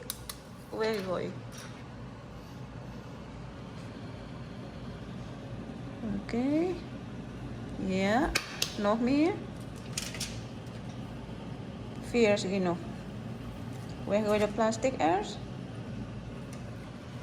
weggooien. Oké. Ja, nog meer. 4 genoeg. Weggooi de plastic eerst.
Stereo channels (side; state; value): both; identical; correlation 1.00